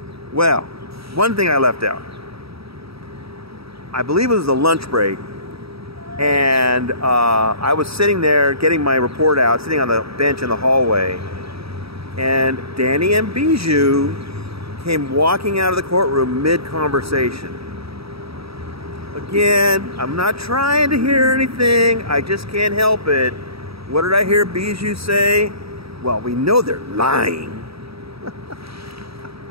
Well, one thing I left out. I believe it was the lunch break. And I was sitting there getting my report out, sitting on the bench in the hallway. And Danny and Bijou came walking out of the courtroom mid-conversation. Again, I'm not trying to hear anything. I just can't help it. What did I hear Bijou say? Well, we know they're lying.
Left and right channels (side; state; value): left; late; 0.77 ms